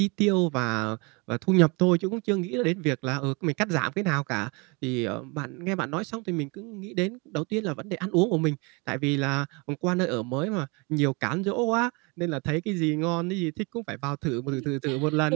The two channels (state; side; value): quieter; left; 29.4 dB